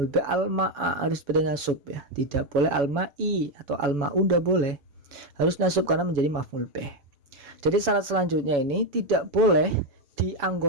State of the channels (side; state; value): left; late; 7.0 ms